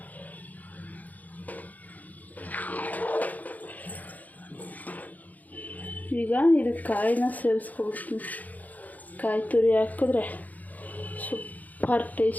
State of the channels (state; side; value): late; right; 0.079 ms